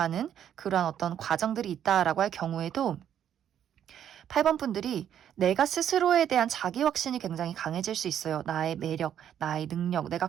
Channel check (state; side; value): quieter; left; 9.8 dB